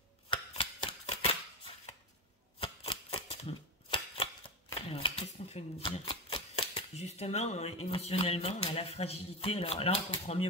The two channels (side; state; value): both; normal; correlation 0.19